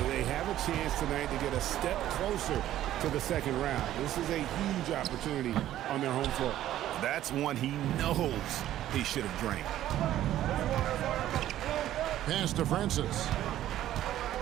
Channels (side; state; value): left; quieter; 12.9 dB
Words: They have a chance tonight to get a step closer to the second round. This is a huge opportunity on their home floor. That's one he knows he should have drained. Pass to Francis.